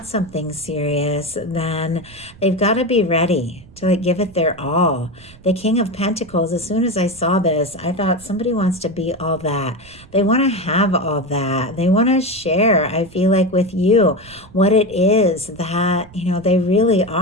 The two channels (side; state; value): right; noise; rumble, 23 dB below the sound